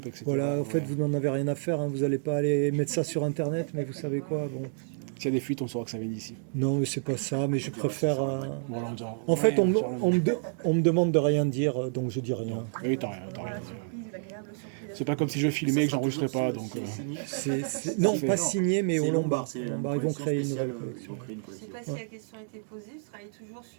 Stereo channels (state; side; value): silent; left; digital silence